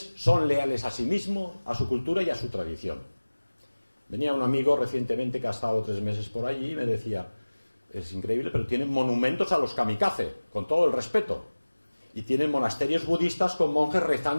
son leales a sí mismos, a su cultura y a su tradición. Venía un amigo recientemente que ha estado 3 meses por allí y me decía: es increíble, pero tienen monumentos a los kamikaze, con todo el respeto. Y tienen monasterios budistas con monjes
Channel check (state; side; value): inverted; both; correlation -1.00